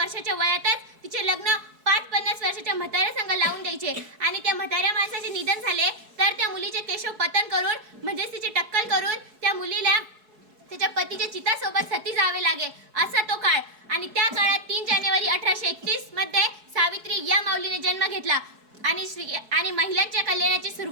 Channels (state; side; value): late; left; 4.7 ms